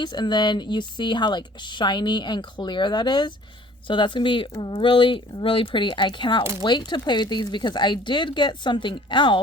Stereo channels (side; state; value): both; normal; correlation 0.52